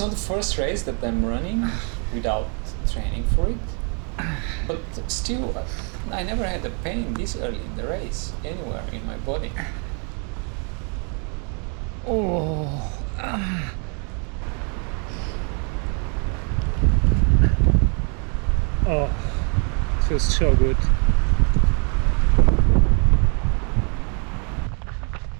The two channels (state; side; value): quieter; left; 38.7 dB